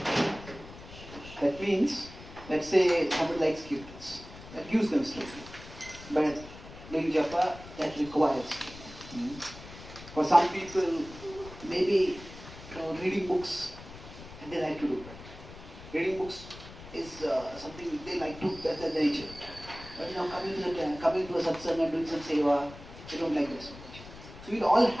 That means, let's say somebody likes kirtans, that gives them strength. But doing japa, that requires strength. For some people, maybe reading books, and they like to do that. Reading books is something they like to, that's their nature. But coming to a satsang and doing some seva, they don't like that so much. So we all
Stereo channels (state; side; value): noise; left; rumble, 16 dB below the sound